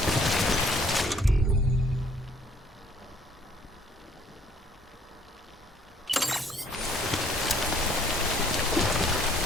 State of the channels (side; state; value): both; normal; correlation 0.61